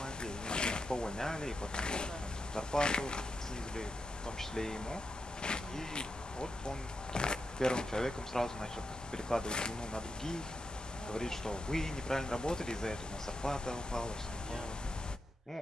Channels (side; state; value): both; normal; correlation 0.85